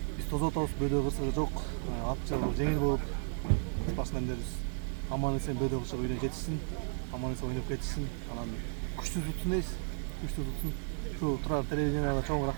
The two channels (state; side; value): silent; left; 55 dB below the other